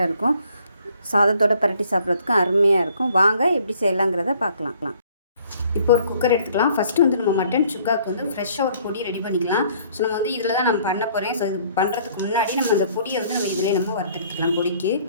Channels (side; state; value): both; inverted; correlation -0.60